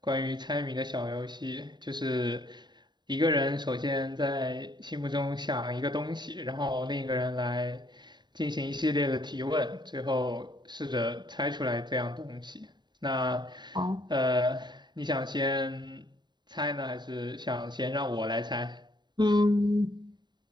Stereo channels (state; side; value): late; left; 0.21 ms